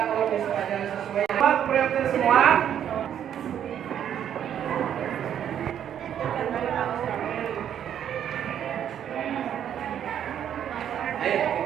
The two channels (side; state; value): left; quieter; 9.6 dB